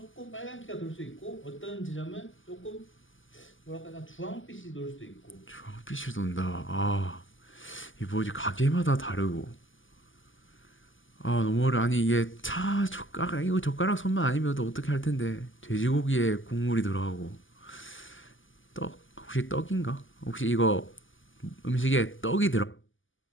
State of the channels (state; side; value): late; right; 0.57 ms